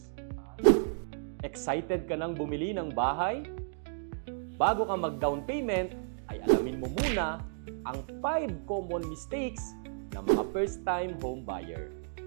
Excited ka nang bumili ng bahay? Bago ka mag-down payment, ay alamin mo muna ang 5 common mistakes ng mga first-time home buyer.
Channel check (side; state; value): left; silent; digital silence